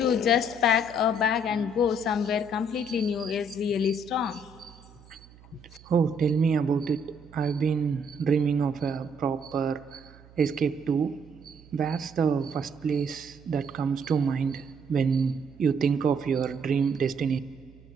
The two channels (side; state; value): right; noise; hum, 23 dB below the sound